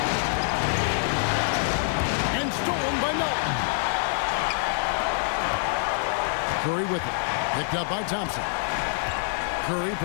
And stolen by Melton. Curry with it. Picked up by Thompson. Curry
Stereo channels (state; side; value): silent; right; digital silence